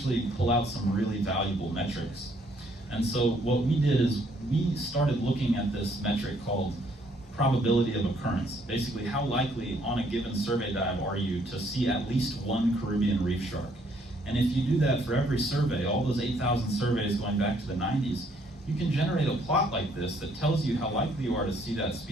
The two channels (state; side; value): normal; both; correlation 0.66